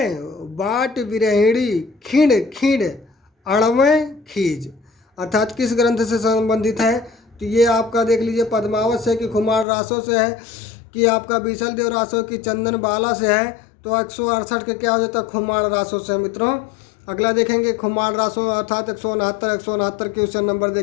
बाट विरहिणी, खिंड खिंड अड़वें खीज। अर्थात किस ग्रंथ से संबंधित है? तो ये आपका देख लीजिए, पद्मावत से कि कुमार रासों से है कि आपका बीसल देव रासो की चंदन बाला से है, तो 168 के क्या हो जाता है, खुमार रासो से मित्रों। अगला देखेंगे खुमार रासो अर्थात 169 के उससे नंबर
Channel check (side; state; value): right; drops out; at 9.7 s